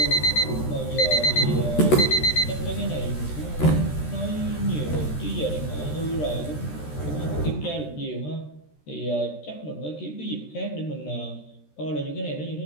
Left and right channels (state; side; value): late; right; 13 ms